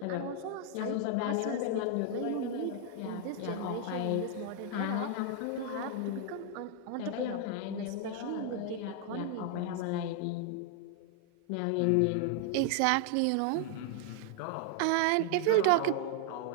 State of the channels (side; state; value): both; different; correlation 0.00